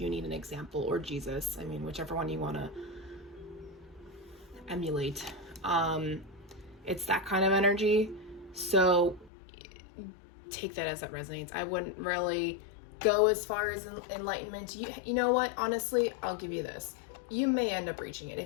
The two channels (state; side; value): drops out; right; at 9.3 s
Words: need an example, or Jesus. I mean, whichever one you want to emulate. It's that kind of energy. So take that as it resonates. I wouldn't really go as far as enlightenment. You know what? Honestly, I'll give you this. You may end up reaching it.